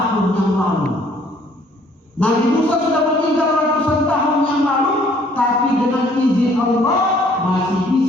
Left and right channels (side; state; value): both; normal; correlation 0.60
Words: yang lalu. Nabi Musa sudah meninggal ratusan tahun yang lalu, tapi dengan izin Allah masih